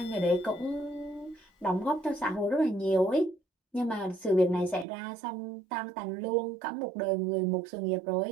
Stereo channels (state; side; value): drops out; left; at 4.9 s